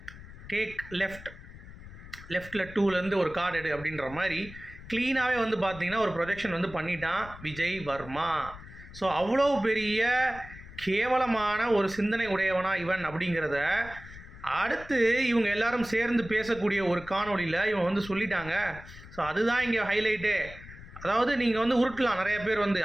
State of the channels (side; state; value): left; noise; rumble, 16 dB below the sound